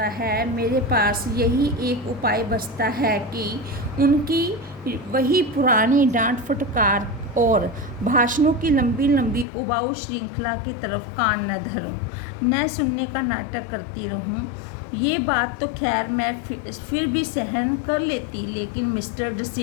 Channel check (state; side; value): drops out; right; at 9.5 s